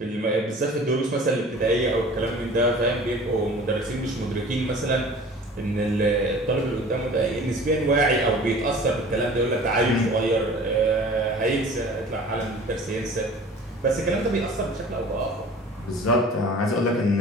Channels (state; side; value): normal; both; correlation 0.44